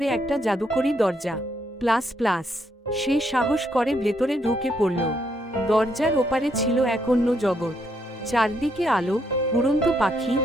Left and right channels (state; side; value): normal; both; correlation 0.75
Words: একটা জাদুকরী দরজা। প্লাস প্লাস, সে সাহস করে ভেতরে ঢুকে পড়ল। দরজার ওপারে ছিল এক অন্য জগৎ। চারদিকে আলো, উড়ন্ত পাখি,